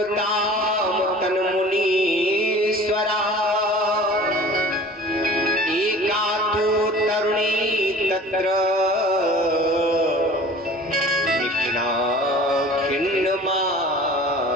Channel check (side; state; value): both; normal; correlation 0.44